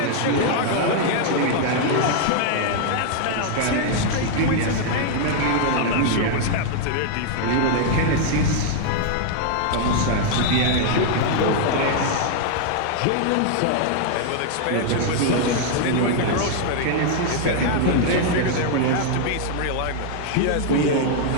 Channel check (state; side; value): different; both; correlation 0.00